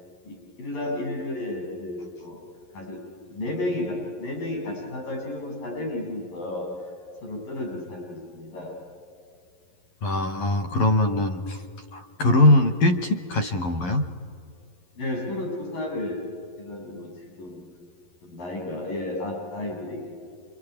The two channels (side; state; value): right; late; 11 ms